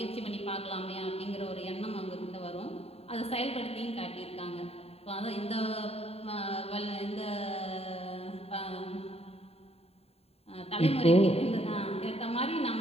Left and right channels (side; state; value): right; late; 0.29 ms